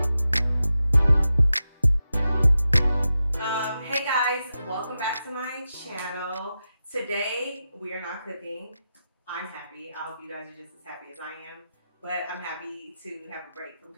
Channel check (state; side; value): inverted; both; correlation -0.90